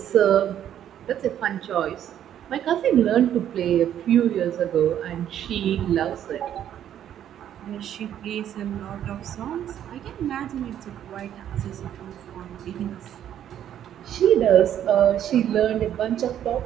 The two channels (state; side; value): quieter; left; 10.5 dB